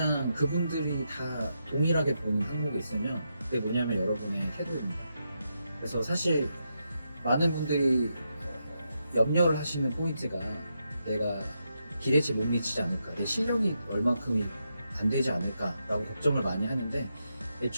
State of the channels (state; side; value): inverted; both; correlation -0.84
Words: 그분들이 다 동일하게 보는 항목이 있으면 그게 뭐냐면 여러분의 태도입니다. 그래서 사실 많은 분들이 염려를 하시는 포인트가 내가 기대치 못 미치지 않을까, 내 실력이 얼만큼이 안 되지 않을까라고 걱정을 많이 하는데,